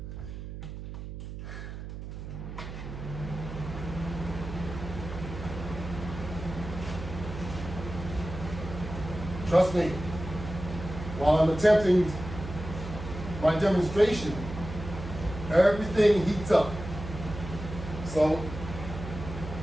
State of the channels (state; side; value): noise; right; hum, 9 dB below the sound